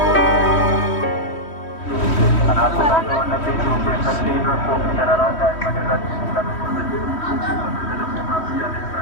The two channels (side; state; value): right; late; 3.1 ms